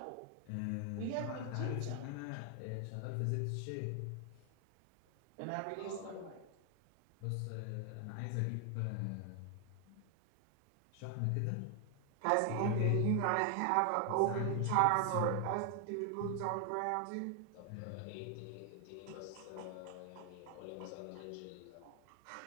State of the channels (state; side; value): different; both; correlation 0.00